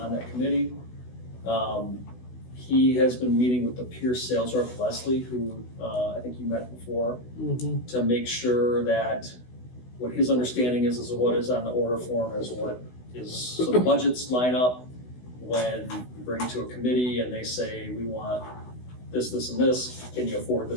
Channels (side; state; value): right; late; 16 ms